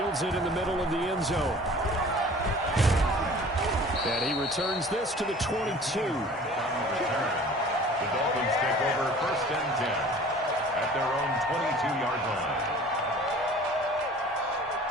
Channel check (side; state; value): both; normal; correlation 0.46